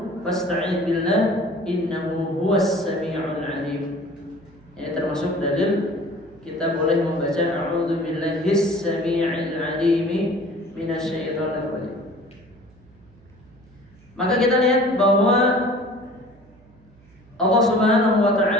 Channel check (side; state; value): right; noise; hum, 27 dB below the sound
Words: fasta'idz billah innahu huwas sami'ul 'alim. Ini termasuk dalil kita boleh membaca a'udzu billahis samii'il 'alimi minasyaitonir rajim. Maka kita lihat bahwa Allah Subhanahu wa